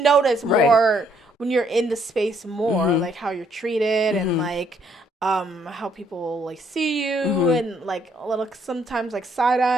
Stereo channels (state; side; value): normal; both; correlation 0.69